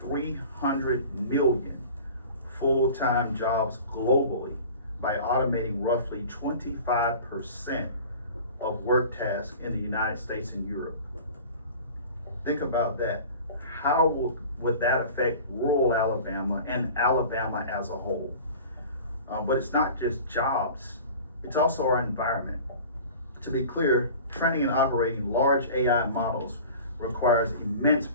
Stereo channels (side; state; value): both; inverted; correlation -0.41